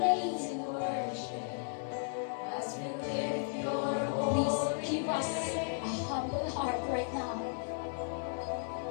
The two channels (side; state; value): right; silent; 54 dB below the other